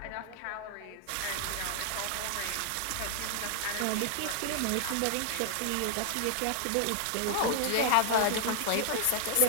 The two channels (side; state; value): both; different; correlation 0.00